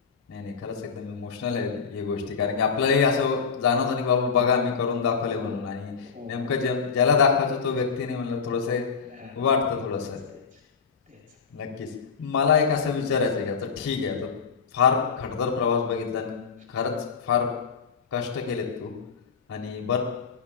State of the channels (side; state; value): right; quieter; 5.8 dB